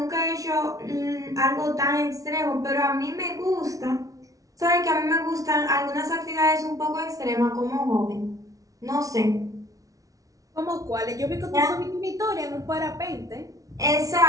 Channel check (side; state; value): left; late; 0.17 ms